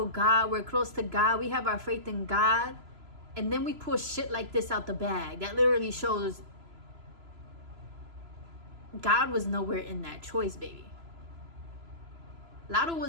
God, we're close to God, we have our faith in God, and then we pull shit like this out the bag. That literally shows God was nowhere in that choice, baby. Latto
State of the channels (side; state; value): left; late; 3.0 ms